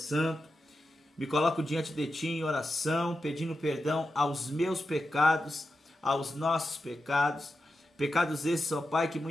Me coloco diante de Ti em oração, pedindo perdão aos meus pecados, aos nossos pecados. Pecados esses, ó Pai, que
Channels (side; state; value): both; normal; correlation 0.90